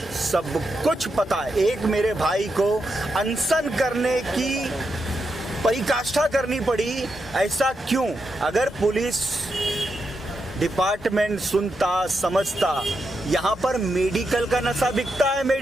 सब कुछ पता है। एक मेरे भाई को अनशन करने की परिकाष्ठा करनी पड़ी, ऐसा क्यों? अगर पुलिस डिपार्टमेंट सुनता, समझता, यहाँ पर मेडिकल का नशा बिकता है।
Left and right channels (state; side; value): normal; both; correlation 0.85